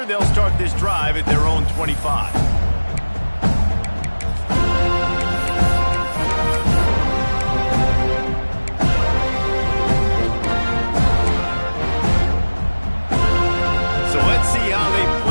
They'll start this drive at their own 25.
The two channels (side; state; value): both; inverted; correlation -1.00